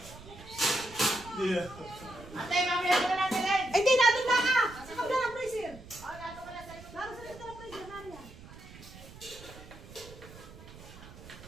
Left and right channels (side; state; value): right; noise; rumble, 17 dB below the sound